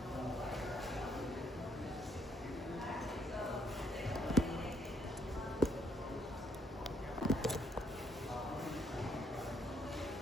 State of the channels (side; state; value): both; normal; correlation 0.70